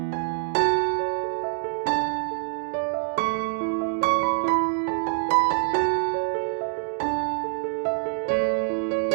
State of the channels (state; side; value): silent; left; 61 dB below the other